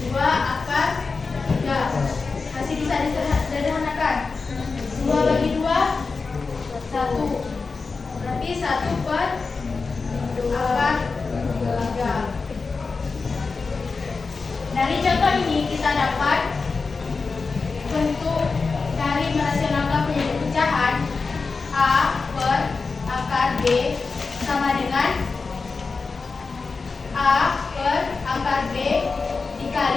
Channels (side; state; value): right; quieter; 4.4 dB